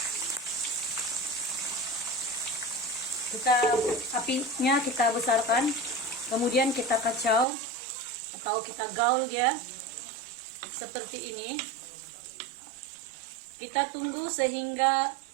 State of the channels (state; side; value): drops out; left; at 7.5 s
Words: Apinya kita besarkan, kemudian kita kacau atau kita gaul dia seperti ini. Kita tunggu sehingga